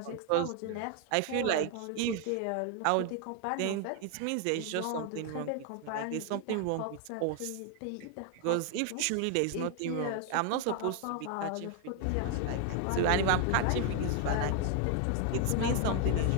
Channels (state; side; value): different; both; correlation 0.00